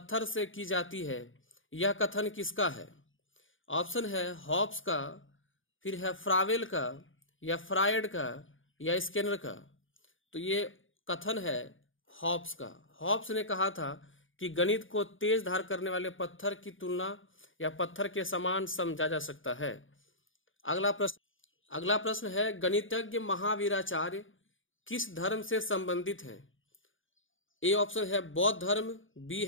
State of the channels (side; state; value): right; late; 0.57 ms